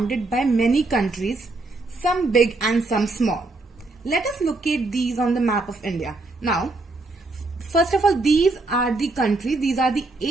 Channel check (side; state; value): left; quieter; 3.2 dB